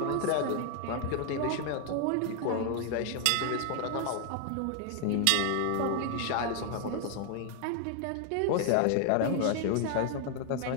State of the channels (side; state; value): both; different; correlation 0.00